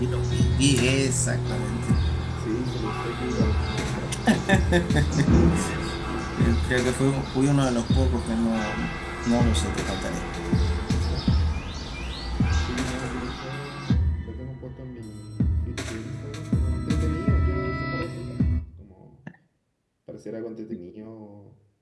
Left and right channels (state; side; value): identical; both; correlation 1.00